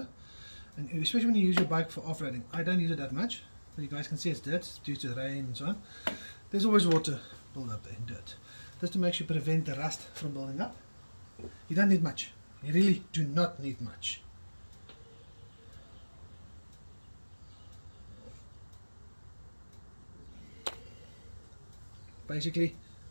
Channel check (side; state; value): both; inverted; correlation -1.00